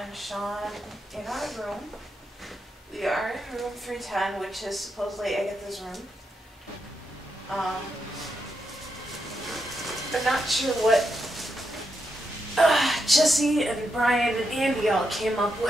Sean in our room. We are in room 310, which is supposedly Agatha's room. I'm not sure what Jesse and Brian and Andy all came up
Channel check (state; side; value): normal; both; correlation 0.83